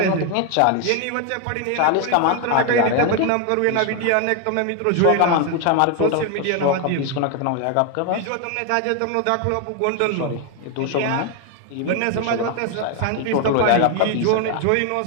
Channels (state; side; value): different; both; correlation 0.01